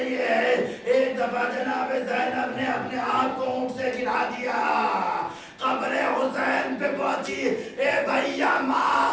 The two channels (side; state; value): both; identical; correlation 1.00